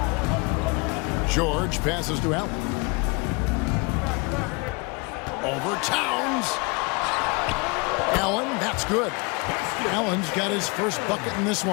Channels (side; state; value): right; quieter; 29.0 dB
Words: George passes to Allen. Over Towns. Allen, that's good. Allen's got his first bucket in this